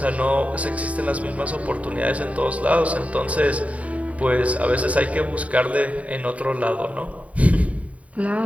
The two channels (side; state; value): left; late; 0.067 ms